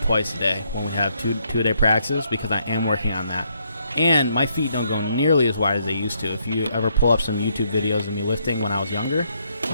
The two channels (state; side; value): inverted; both; correlation -0.74